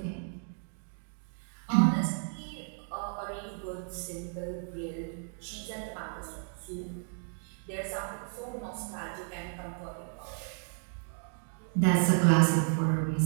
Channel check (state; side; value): silent; left; 56 dB below the other